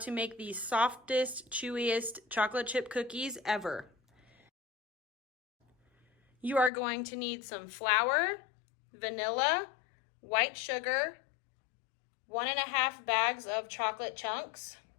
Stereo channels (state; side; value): drops out; right; at 6.7 s